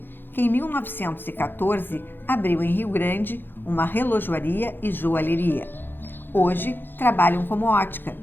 que em 1914 abriu em Rio Grande uma relojoaria e joalheria. Hoje trabalham como ótica,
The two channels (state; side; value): late; right; 0.098 ms